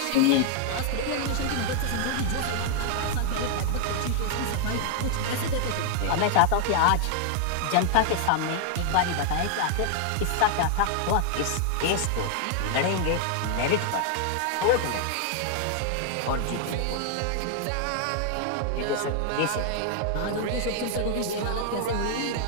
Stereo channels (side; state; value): both; different; correlation 0.00